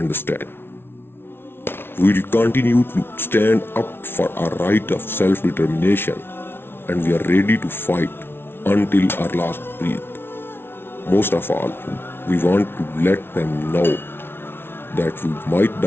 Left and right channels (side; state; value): right; late; 0.11 ms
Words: We will continue to stand up for our right of self-determination, and we are ready to fight until our last breath. Most of all, we want to let them know that we might